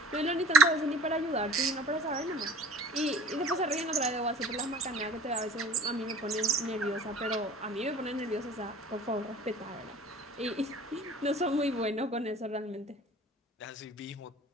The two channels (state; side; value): normal; both; correlation 0.45